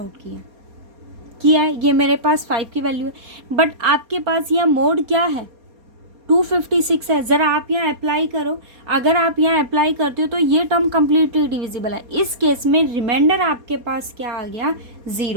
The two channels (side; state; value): left; late; 4.3 ms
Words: किया है। ये मेरे पास 5 की वैल्यू है, बट आपके पास यहाँ मोड क्या है 256 है। ज़रा आप यहाँ अप्लाई करो, अगर आप यहाँ अप्लाई करते हो तो ये टर्म कम्प्लीटली डिविजिबल है। इस केस में रिमाइंडर आपके पास क्या आ गया